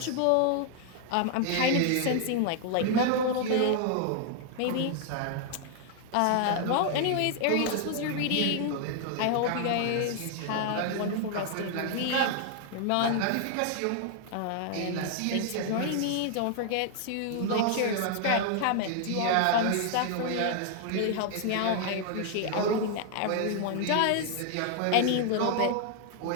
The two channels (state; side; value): different; both; correlation 0.00